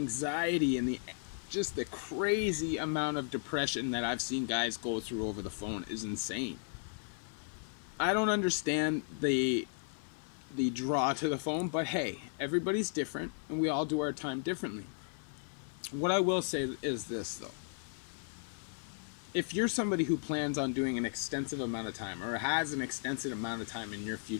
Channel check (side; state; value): right; silent; 54 dB below the other